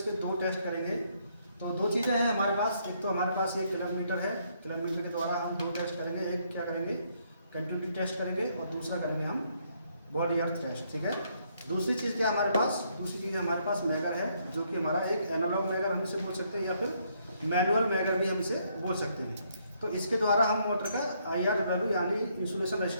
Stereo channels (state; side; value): inverted; both; correlation -0.71